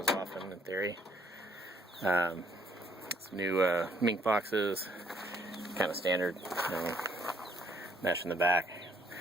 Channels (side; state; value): both; normal; correlation 0.67